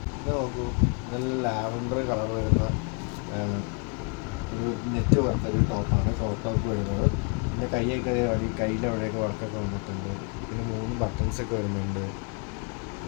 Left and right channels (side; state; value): right; quieter; 36.0 dB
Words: ഇത് നോക്കൂ, നല്ല ലാവൻഡർ കളർ വരുന്ന ഒരു നെറ്റ് പോലത്തെ ഒരു ടോപ്പാണ് ക്രോപ്പ് ടോപ്പ് വരുന്നത്. പിന്നെ കയ്യിലെ അവിടെയൊക്കെ വർക്കൊക്കെ വന്നിട്ടുണ്ട്. പിന്നെ 3 ബട്ടൺസൊക്കെ വരുന്നുണ്ട്.